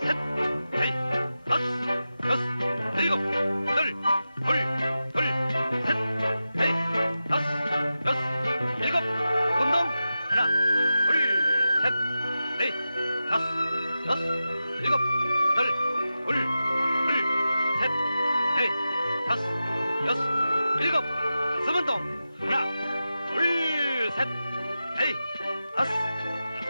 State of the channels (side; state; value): both; inverted; correlation -0.92